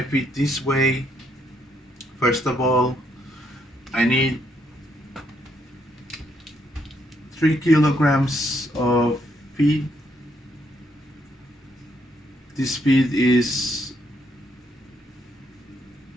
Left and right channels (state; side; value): normal; both; correlation 0.73